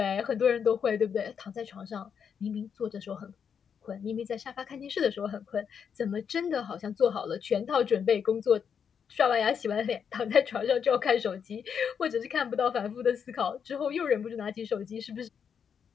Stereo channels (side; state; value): right; quieter; 7.2 dB